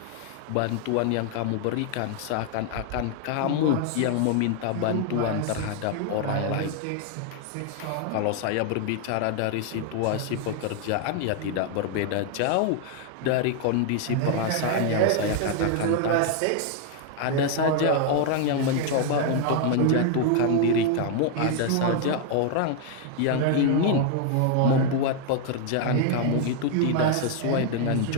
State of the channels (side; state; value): both; different; correlation 0.00